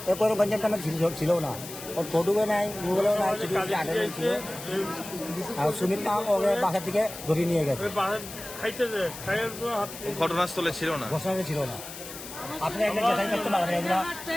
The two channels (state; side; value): noise; left; hiss, 12 dB below the sound